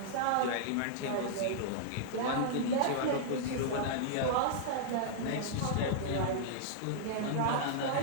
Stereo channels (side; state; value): both; different; correlation -0.01